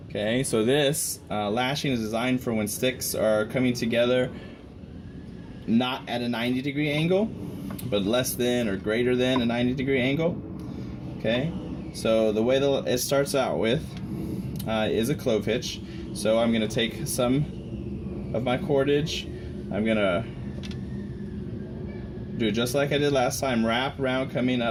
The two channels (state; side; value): identical; both; correlation 1.00